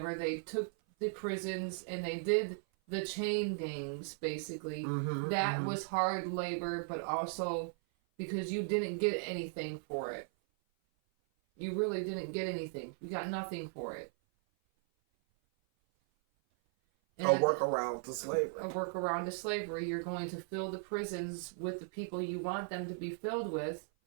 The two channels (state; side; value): silent; left; 53 dB below the other